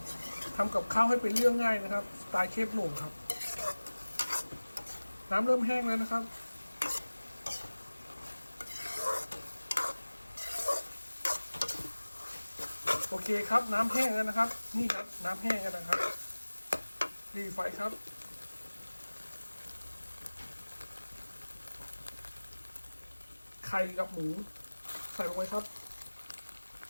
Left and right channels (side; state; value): both; inverted; correlation -1.00